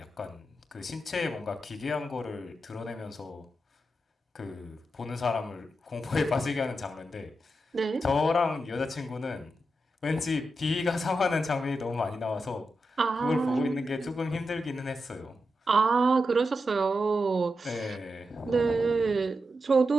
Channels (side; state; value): both; normal; correlation 0.87